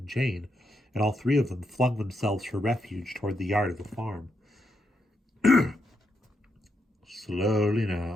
Jane, and all three of them flung themselves for refuge toward the yard of the farm. "Slowly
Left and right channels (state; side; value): normal; both; correlation 0.81